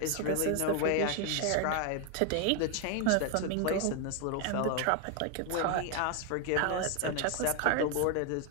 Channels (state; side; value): different; both; correlation 0.01